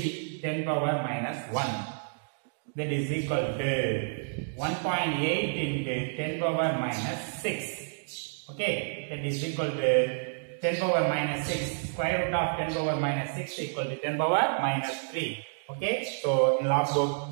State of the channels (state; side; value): silent; left; digital silence